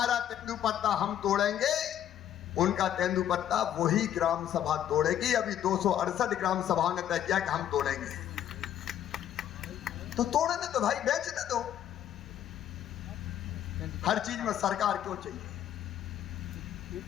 तेंदुपत्ता हम तोड़ेंगे, उनका तेंदुपत्ता वही ग्राम सभा तोड़ेगी। अभी 268 ग्राम सभाओं ने तय किया कि हम तोड़ेंगे, तो तोड़ने दो भाई, बेचने दो। हर चीज में सरकार क्यों चाहिए?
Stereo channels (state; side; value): quieter; right; 10.7 dB